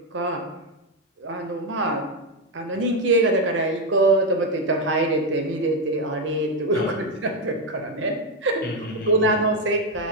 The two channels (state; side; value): normal; both; correlation 0.06